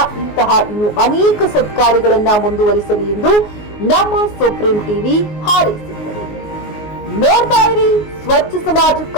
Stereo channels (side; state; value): right; late; 19 ms